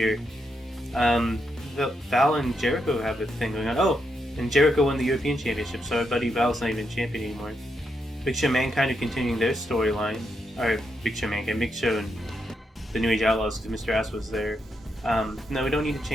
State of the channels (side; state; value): both; normal; correlation 0.82